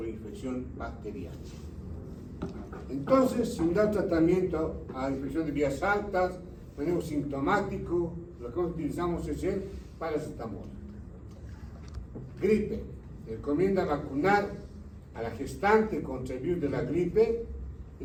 bacteriana. Entonces, sin dar tratamiento a infección de vías altas, manejo sintomático, lo que utilizamos es el paracetamol. Gripe. Recomienda vacunar a la gestante contra el virus de la gripe.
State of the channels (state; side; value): identical; both; correlation 1.00